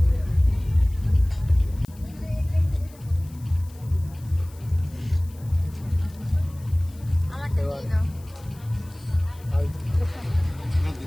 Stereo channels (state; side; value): noise; left; hiss, 25 dB below the sound